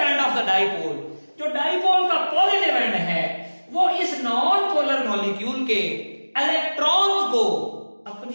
of the dipole, जो डाइपोल का पॉजिटिव एंड है वो इस नॉन पोलर मॉलिक्यूल के इलेक्ट्रॉन्स को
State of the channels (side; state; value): both; inverted; correlation -1.00